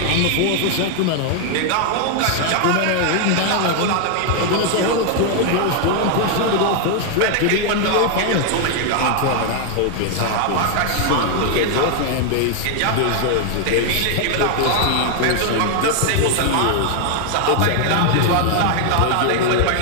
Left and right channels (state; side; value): different; both; correlation 0.00